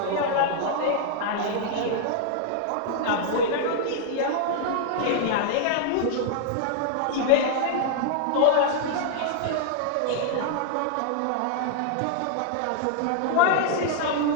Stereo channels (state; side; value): different; both; correlation -0.01